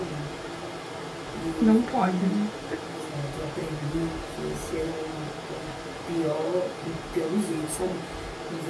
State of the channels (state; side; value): identical; both; correlation 1.00